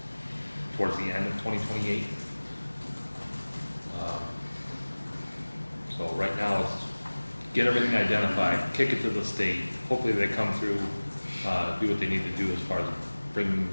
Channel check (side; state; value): both; inverted; correlation -1.00